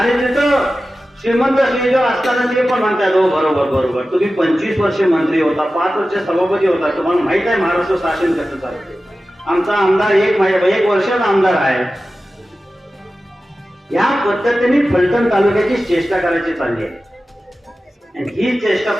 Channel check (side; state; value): both; normal; correlation 0.94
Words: तिथं श्रीमंत श्रीदेव असताना ते पण म्हणतात, हो बरोबर तुम्ही 25 वर्ष मंत्री होता, 5 वर्ष सभापती होता, तुम्हाला माहित आहे महाराष्ट्र शासन कसं चालते. आमचा आमदार 1 वर्षाचा आमदार आहे. या पद्धतीने फलटण तालुक्याची चेष्टा करायची चालली आहे. ही चेष्टा